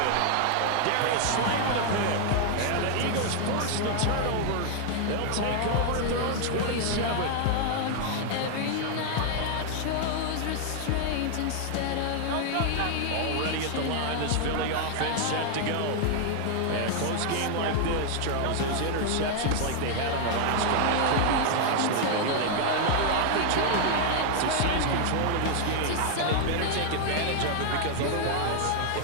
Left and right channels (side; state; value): both; different; correlation 0.00